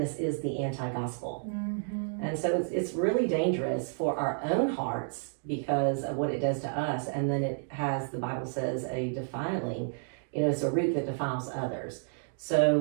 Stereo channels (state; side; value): silent; left; digital silence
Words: is the anti-gospel. And so it's really dangerous for our own hearts because of what it does to us. And then it has, the Bible says, a defiling, it's a root that defiles others.